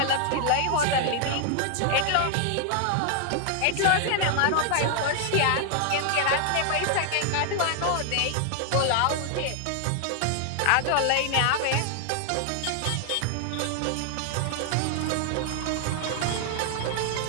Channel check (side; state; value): both; different; correlation 0.00